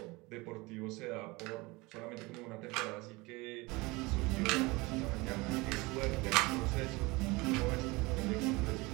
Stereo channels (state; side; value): quieter; left; 23.7 dB